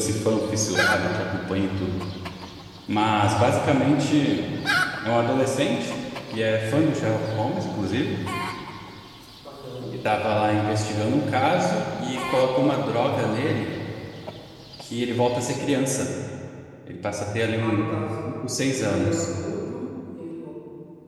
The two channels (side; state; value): both; identical; correlation 1.00